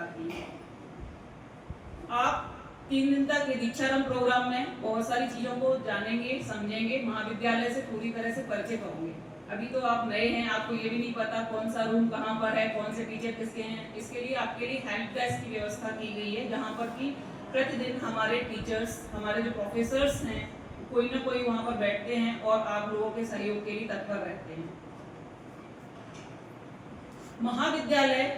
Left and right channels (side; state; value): both; identical; correlation 1.00